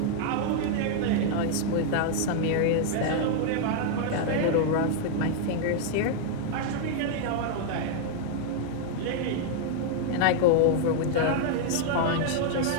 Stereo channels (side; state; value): both; different; correlation 0.00